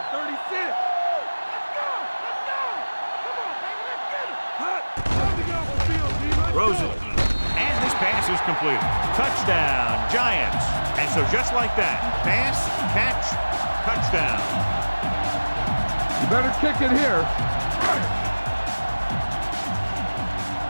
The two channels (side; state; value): both; inverted; correlation -1.00